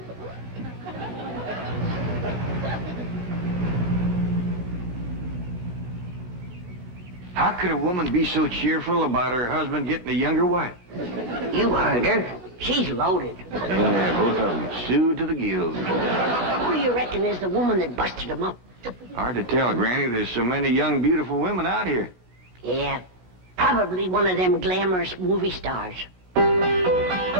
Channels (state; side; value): late; left; 17 ms